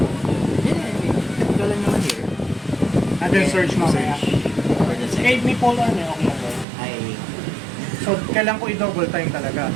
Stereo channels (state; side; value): drops out; left; at 6.7 s